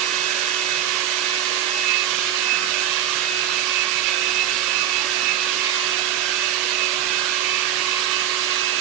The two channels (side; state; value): left; quieter; 11.3 dB